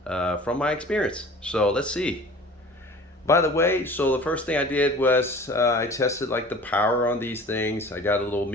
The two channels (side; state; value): both; normal; correlation 0.44